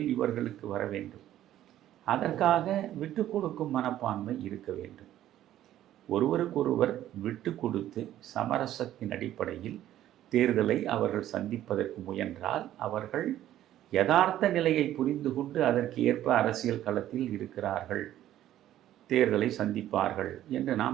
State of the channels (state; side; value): quieter; left; 12.7 dB